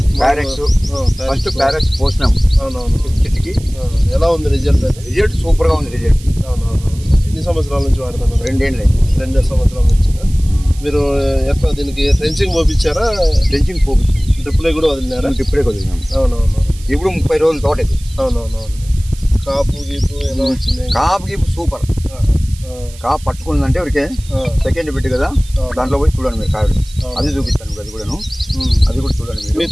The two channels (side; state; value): right; noise; hiss, 20 dB below the sound